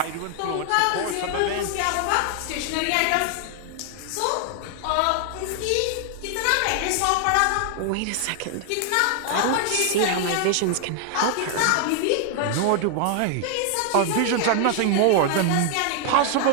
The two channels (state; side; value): different; both; correlation 0.00